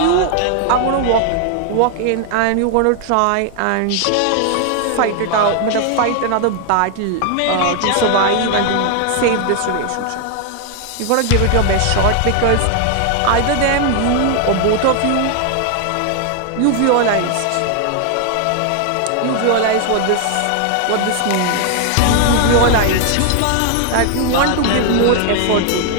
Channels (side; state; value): both; different; correlation 0.00